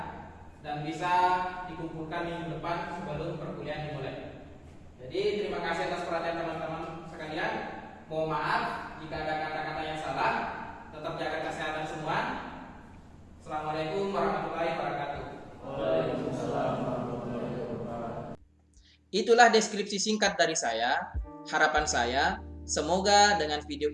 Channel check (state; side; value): identical; both; correlation 1.00